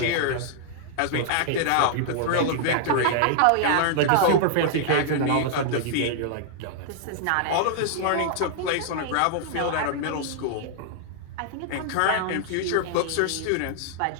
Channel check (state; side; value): different; both; correlation -0.01